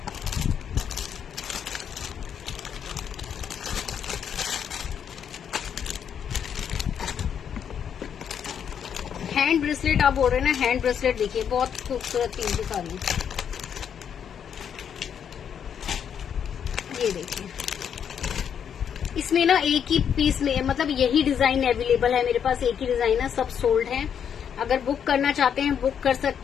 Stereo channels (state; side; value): quieter; right; 8.1 dB